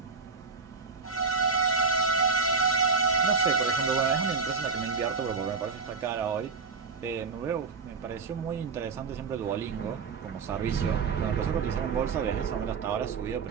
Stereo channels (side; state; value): left; quieter; 5.0 dB